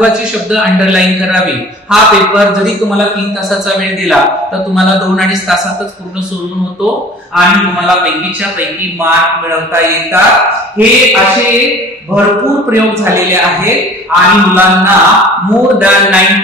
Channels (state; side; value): normal; both; correlation 0.46